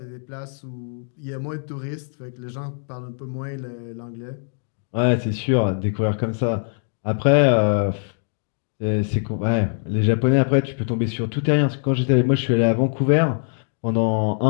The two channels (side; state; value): right; silent; digital silence